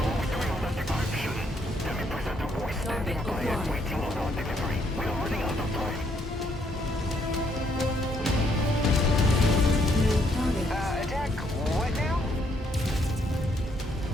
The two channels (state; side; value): normal; both; correlation 0.71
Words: are we doing on that decryption? Let me present a voice standing by and waiting on our delivery. We are running out of time. Attack what now?